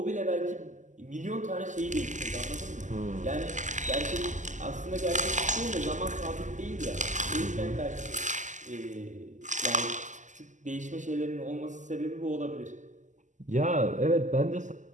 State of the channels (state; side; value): late; left; 0.36 ms